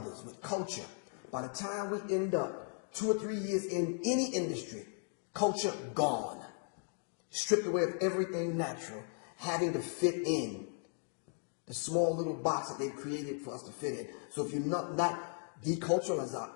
with culture, by the time we end up 2 or 3 years in any industry, culture gone, stripped away of everything natural, having to fit in the small little box that they've created for us to fit in. So if you're not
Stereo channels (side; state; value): right; silent; 53 dB below the other